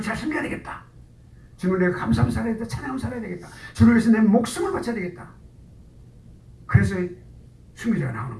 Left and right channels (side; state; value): both; identical; correlation 1.00